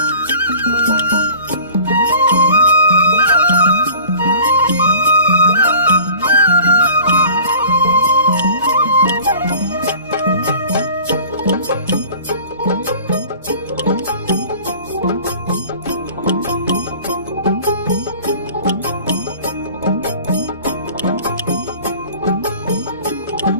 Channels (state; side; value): inverted; both; correlation -0.45